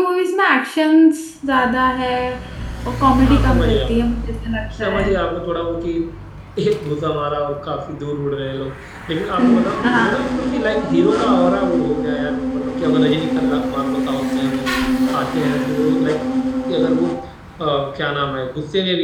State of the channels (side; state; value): both; identical; correlation 1.00